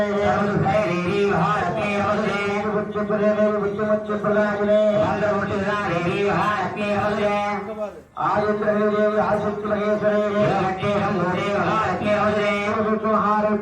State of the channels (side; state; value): both; identical; correlation 1.00